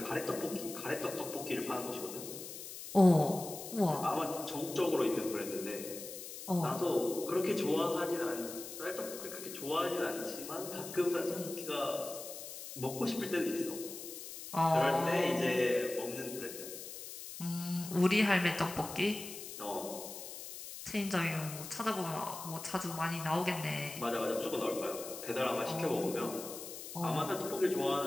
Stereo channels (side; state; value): left; noise; hiss, 10 dB below the sound